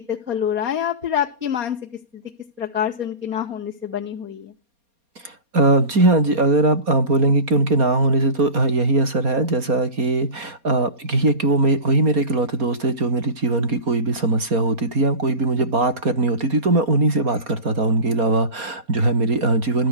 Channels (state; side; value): late; left; 4.3 ms